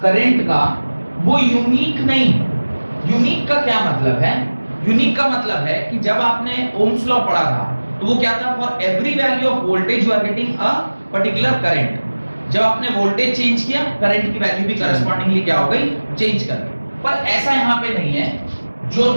करंट का वो यूनिक नहीं। यूनिक का क्या मतलब है? यूनिक का मतलब है कि जब आपने ओम्स लॉ पढ़ा था तो वो क्या था, for every value of voltage you are getting a particular current. जब आपने वोल्टेज चेंज किया करंट की वैल्यू भी करस्पॉन्डिंगली क्या हो गई, चेंज कर गई। पर ऐसा यहाँ पे नहीं है। जो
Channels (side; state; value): both; inverted; correlation -1.00